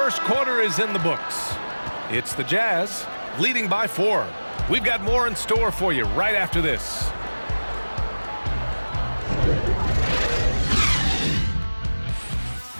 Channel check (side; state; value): both; inverted; correlation -1.00